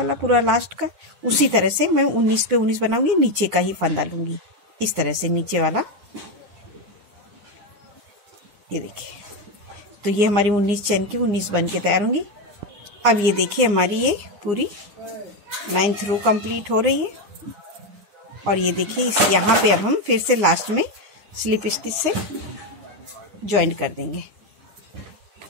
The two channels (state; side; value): late; left; 10 ms